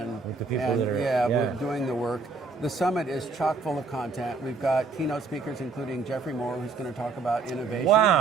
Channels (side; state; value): left; quieter; 4.3 dB